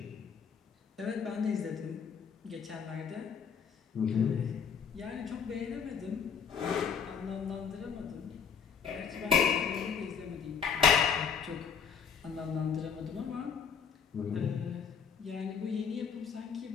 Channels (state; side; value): quieter; right; 6.6 dB